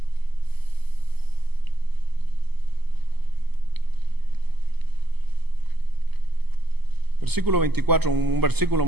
Versículo 24, un versículo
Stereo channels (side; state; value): left; late; 0.97 ms